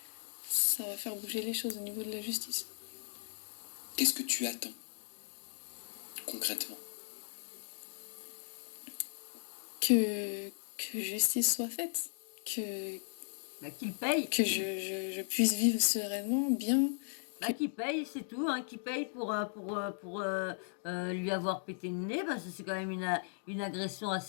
ça va faire bouger les choses au niveau de la justice. Qu'est-ce que tu attends concrètement? Que justice soit faite, Bah, qu'il paye. que je puisse vivre sereinement, bien. Bah, qu'il paye, c'est tout. Hein, qu'il paye pour lui avoir pété le nez. Parce que c'est quand même une agression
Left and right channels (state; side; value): silent; right; digital silence